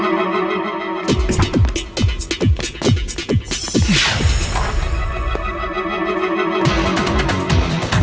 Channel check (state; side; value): identical; both; correlation 1.00